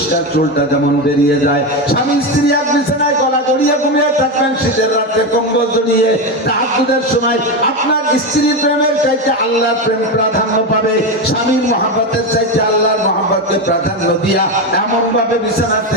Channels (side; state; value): both; normal; correlation 0.14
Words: চুলটা যেমন বেরিয়ে যায়। স্বামী স্ত্রী এক বিছানায় গলা জড়িয়ে ঘুমিয়ে থাকবেন, শীতের রাত্রে কম্বল জড়িয়ে। তাহাজ্জুদের সময় আপনার স্ত্রীর প্রেমের চাইতে আল্লাহর প্রেম প্রাধান্য পাবে। স্বামীর মহব্বতের চাইতে আল্লাহর মহব্বতকে প্রাধান্য দিয়া এমন ভাবে বিছানা